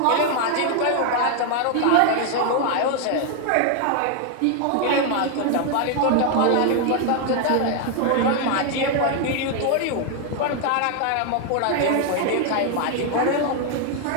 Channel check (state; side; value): different; both; correlation 0.00